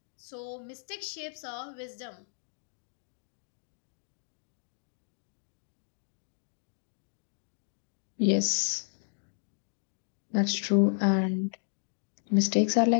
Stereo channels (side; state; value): right; silent; digital silence